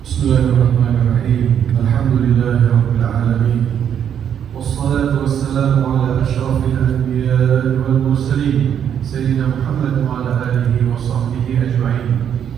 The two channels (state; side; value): quieter; left; 8.8 dB